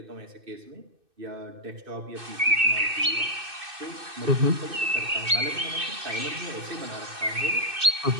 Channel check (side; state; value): left; late; 2.6 ms